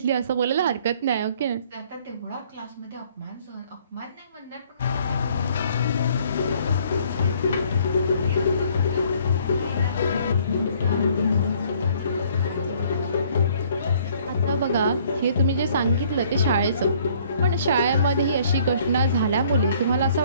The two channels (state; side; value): inverted; both; correlation -0.60